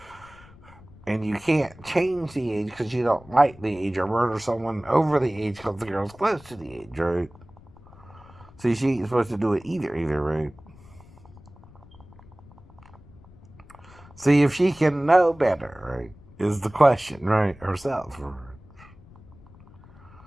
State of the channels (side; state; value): left; noise; rumble, 23 dB below the sound